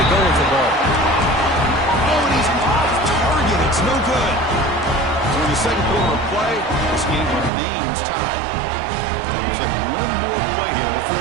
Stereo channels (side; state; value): left; drops out; at 7.5 s